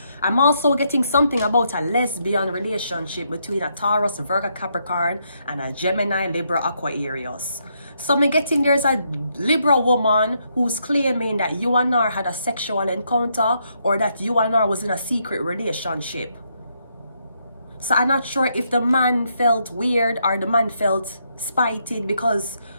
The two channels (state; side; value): inverted; both; correlation -0.77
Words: I'm also getting something about a lesbian relationship between a Taurus, Virgo, Capricorn, and a Gemini, Libra, Aquarius. So I'm getting there's a Libra woman who's claiming that you and her had a sexual encounter, or that you and her was in a secret relationship. So I'm not sure if the man felt weird or the man felt spited because